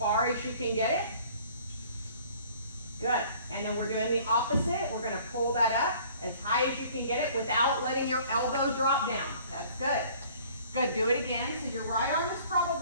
as you can get it. Good. And then we're doing the opposite. We're going to pull that up as high as you can get it without letting your elbow drop down. That's good. Good. Do it again. So your right arm is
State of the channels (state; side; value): inverted; both; correlation -0.53